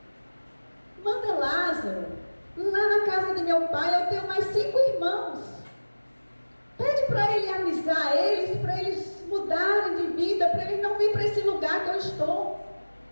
manda Lázaro lá na casa de meu pai. Eu tenho mais 5 irmãos. Pede para ele avisar eles, para eles mudarem de vida, para eles não virem para esse lugar que eu estou.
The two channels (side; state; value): both; inverted; correlation -1.00